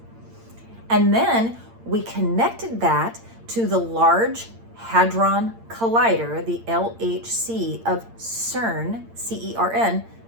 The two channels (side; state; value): left; late; 8.8 ms